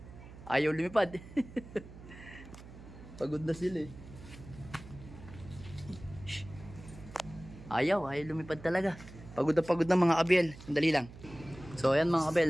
Ayaw lumipad. Pagod na sila, eh. Ayaw lumipad talaga. Pagod na mga kabel. Sandali lang. So ayan, mga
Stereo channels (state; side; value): noise; right; hum, 16 dB below the sound